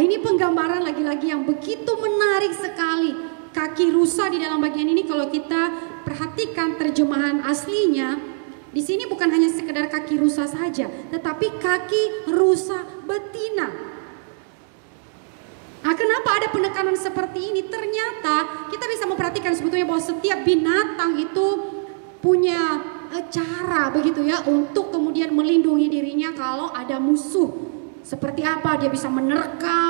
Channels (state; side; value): silent; left; 58 dB below the other